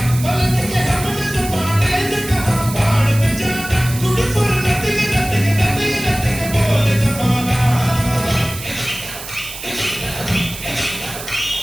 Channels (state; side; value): noise; right; hiss, 11 dB below the sound